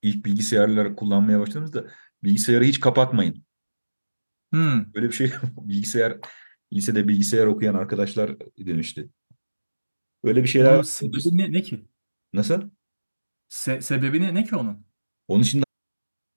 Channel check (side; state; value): both; inverted; correlation -1.00